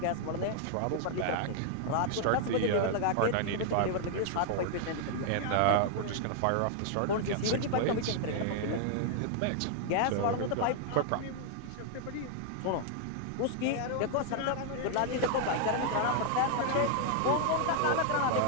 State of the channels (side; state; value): both; different; correlation 0.00